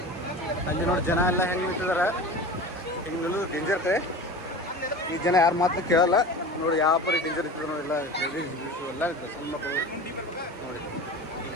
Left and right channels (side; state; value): both; normal; correlation 0.34